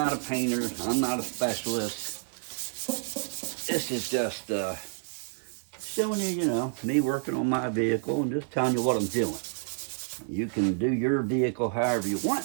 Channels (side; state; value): left; silent; digital silence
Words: a painter. I'm not a specialist. This is just showing you, you know, me working on my vehicle and just telling you what I'm doing. You can do your vehicle however you want.